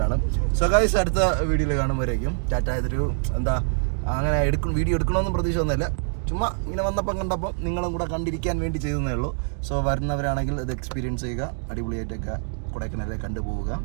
സോ ഗൈസ്, അടുത്ത വീഡിയോയിൽ കാണുമ്പോഴേക്കും ടാറ്റ. ഇതൊരു അങ്ങനെ വീഡിയോ എടുക്കണമെന്നും പ്രതീക്ഷ ഒന്നുമില്ല. ചുമ്മാ ഇങ്ങനെ വന്നപ്പം കണ്ടപ്പോൾ നിങ്ങളും കൂടെ കണ്ടിരിക്കാൻ വേണ്ടി ചെയ്തതേ ഉള്ളൂ. സോ വരുന്നവരാണെങ്കിൽ ഇത് എക്സ്പീരിയൻസ് ചെയ്യുക, അടിപൊളിയായിട്ടൊക്കെ കൊടൈക്കനാലിൽ കണ്ടുപോവുക.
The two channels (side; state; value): left; silent; digital silence